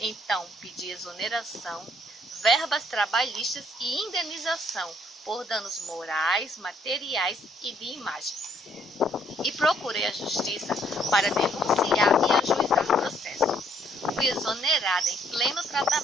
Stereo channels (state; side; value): normal; both; correlation 0.67